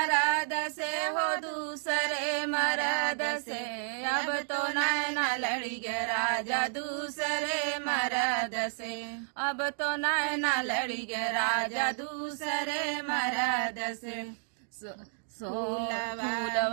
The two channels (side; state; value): left; silent; digital silence